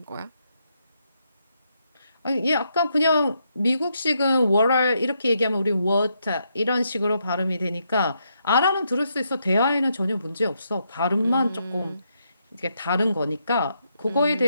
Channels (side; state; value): both; inverted; correlation -0.79